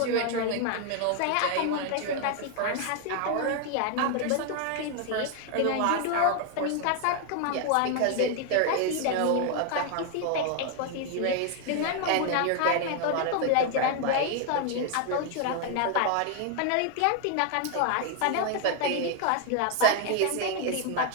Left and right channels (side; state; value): both; different; correlation 0.00